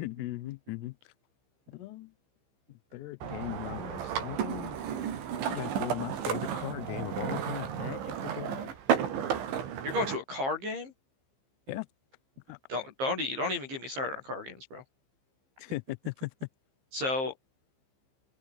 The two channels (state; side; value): late; left; 15 ms